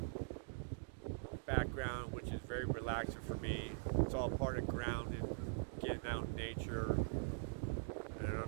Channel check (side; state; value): left; silent; digital silence